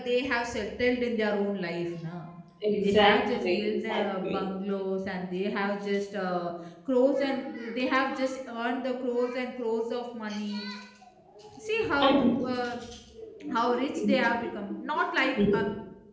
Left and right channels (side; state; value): both; identical; correlation 1.00